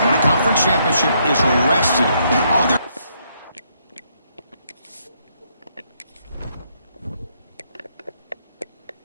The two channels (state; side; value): inverted; both; correlation -0.73